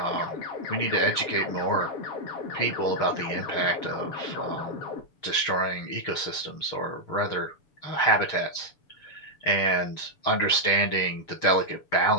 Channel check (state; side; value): late; right; 6.9 ms